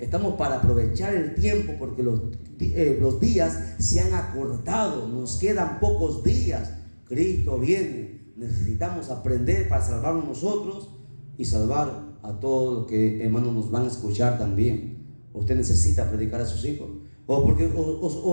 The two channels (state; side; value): inverted; both; correlation -1.00